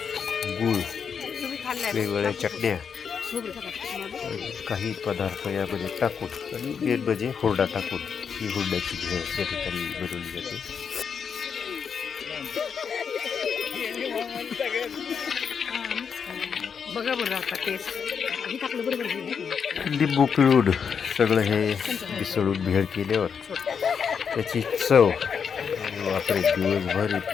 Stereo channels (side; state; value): right; quieter; 6.7 dB